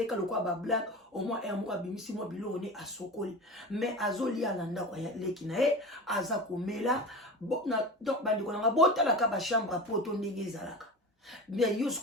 lokwa bablague omwa moko abimisi mwa biloko ne asokoli mais azolia na ndako ya leki na ye aza komela donc bandeko nanga botalaka bachambre poto ndenge ezalaka bien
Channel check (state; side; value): normal; both; correlation 0.30